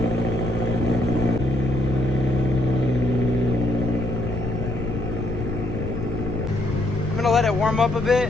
Let it warm up a bit,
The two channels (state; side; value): noise; left; rumble, 5 dB below the sound